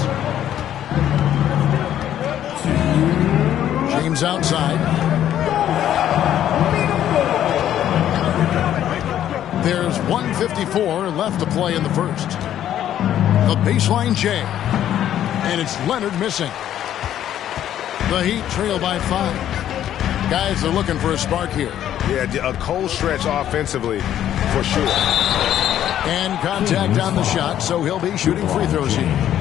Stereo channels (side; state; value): right; quieter; 11.2 dB